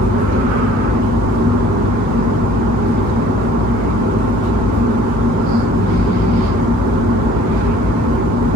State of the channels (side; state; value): both; normal; correlation 0.52